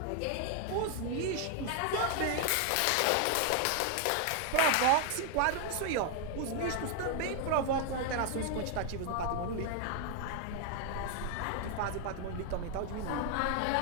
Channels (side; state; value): both; different; correlation 0.00